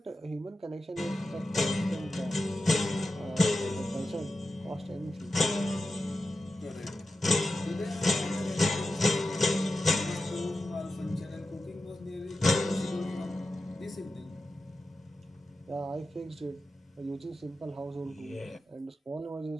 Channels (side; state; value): both; normal; correlation 0.91